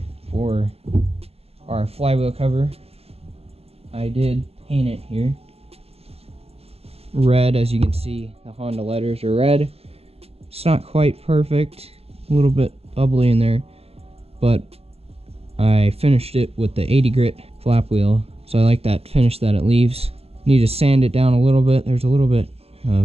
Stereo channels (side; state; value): left; late; 0.29 ms